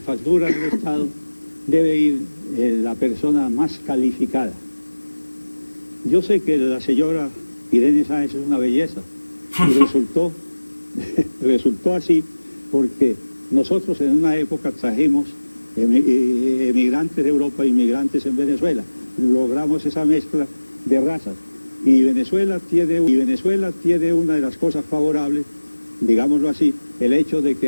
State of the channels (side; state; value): both; inverted; correlation -1.00